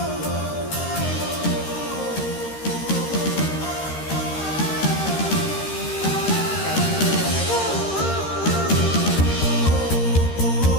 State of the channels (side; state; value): right; late; 13 ms